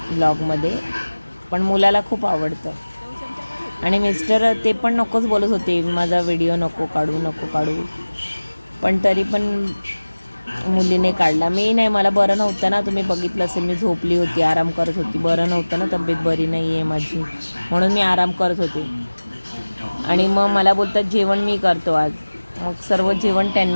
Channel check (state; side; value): inverted; both; correlation -1.00